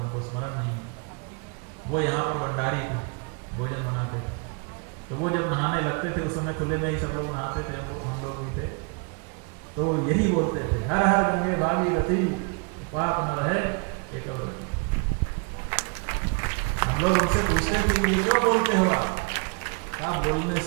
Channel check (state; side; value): quieter; left; 35.1 dB